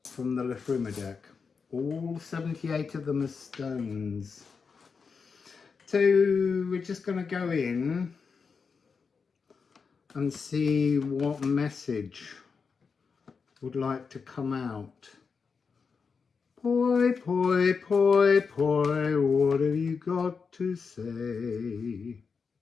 from the Liffruma deck. All 78 of them are stones. So we're just going to go in and see what message would like to come out. Poi, poi, poi, poi, what have you got to say?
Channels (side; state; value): right; quieter; 5.4 dB